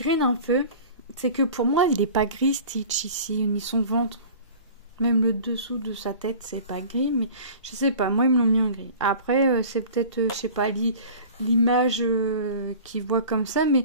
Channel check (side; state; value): both; inverted; correlation -0.41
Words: un peu. C'est que pour moi, il n'est pas gris Stitch ici, ni son ventre. Même le dessous de sa tête, c'est pas gris, mais je sais pas, moi ils me l'ont mis en gris. Après, c'est peut-être, je sais pas, l'image qu'ils voient comme ça,